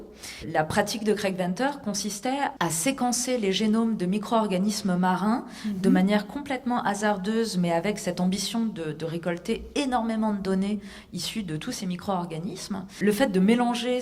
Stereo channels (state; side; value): identical; both; correlation 1.00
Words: La pratique de Craig Venter consistait à séquencer les génomes de micro-organismes marins de manière complètement hasardeuse, mais avec cette ambition de récolter énormément de données issues de tous ces micro-organismes. Le fait de mélanger